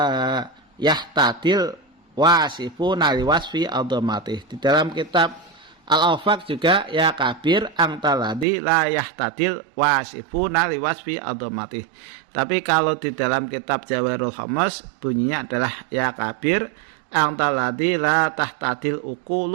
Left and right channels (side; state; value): left; drops out; at 8.5 s